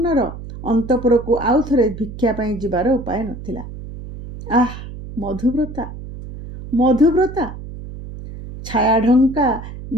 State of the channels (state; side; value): noise; right; hum, 12 dB below the sound